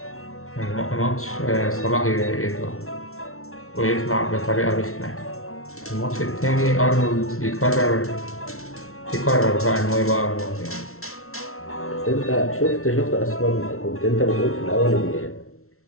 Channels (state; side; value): late; right; 0.63 ms